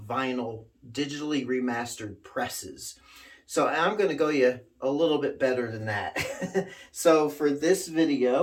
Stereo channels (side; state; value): both; identical; correlation 1.00